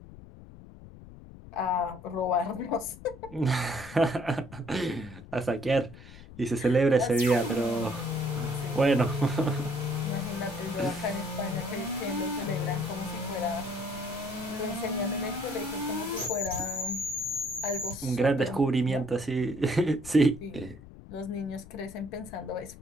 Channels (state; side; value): noise; left; rumble, 17 dB below the sound